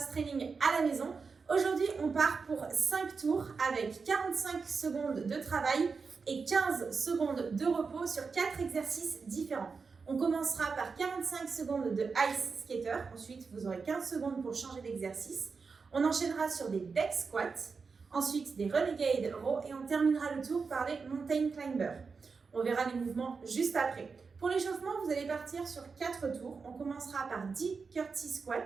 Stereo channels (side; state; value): left; quieter; 4.9 dB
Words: training à la maison. Aujourd'hui, on part pour 5 tours avec 45 secondes de travail et 15 secondes de repos sur 4 exercices différents. On commencera par 45 secondes de ice skater. Ensuite, vous aurez 15 secondes pour changer d'exercice. On enchaînera sur des deck squats. Ensuite, des renegade row et on terminera le tour par les mountain climbers. On verra les mouvements juste après. Pour l'échauffement, vous allez partir sur 4 tours. On commencera par 10 curtsy